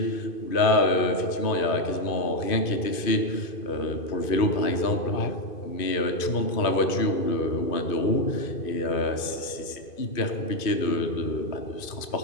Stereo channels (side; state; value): right; late; 2.5 ms